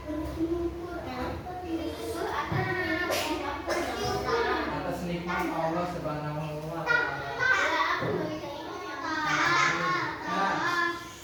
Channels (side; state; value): both; identical; correlation 1.00